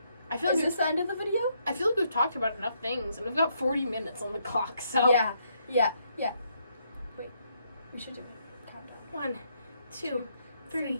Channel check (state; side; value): inverted; both; correlation -0.74